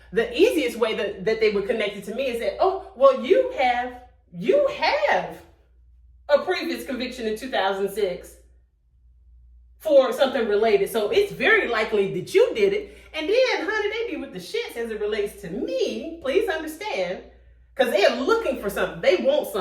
the easiest way that they would connect it to me is that, oh, well, you have a previous conviction in 2006 for something related, so it's very likely that you did it. And then, honey, they be with the shits as it relates to me. Please understand, because they're looking for something. They want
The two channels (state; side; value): identical; both; correlation 1.00